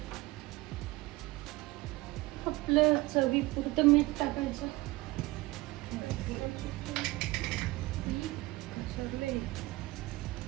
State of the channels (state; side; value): quieter; left; 20.6 dB